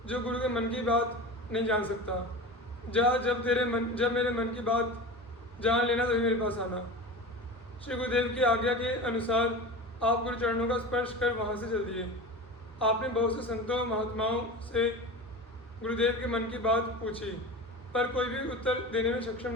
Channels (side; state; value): both; normal; correlation 0.30